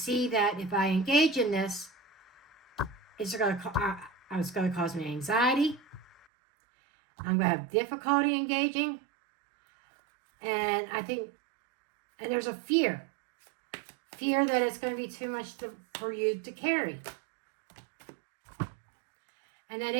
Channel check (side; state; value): left; drops out; at 6.2 s